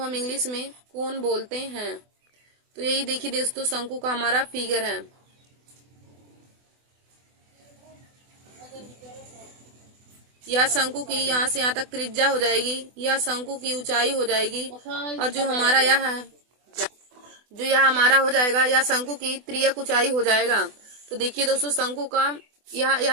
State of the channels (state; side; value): late; left; 24 ms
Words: इंग्लिश में कोन बोलते हैं। तो यही देखिए दोस्तों, शंकु का हमारा फिगर है। यह शंकु की यहाँ से यहाँ तक त्रिज्या हो जाएगी, यह शंकु की ऊंचाई हो जाएगी, और जो हमारा यह है, जो यह हमारा हो जाएगा, यह शंकु की तिर्यक ऊंचाई हो जाएगा। तो देखिए दोस्तों, शंकु का